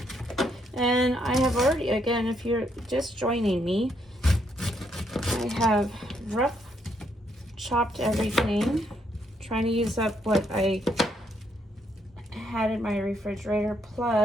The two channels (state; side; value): normal; both; correlation 0.74